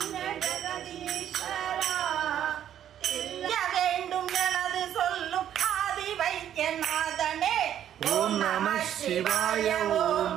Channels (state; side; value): quieter; left; 10.5 dB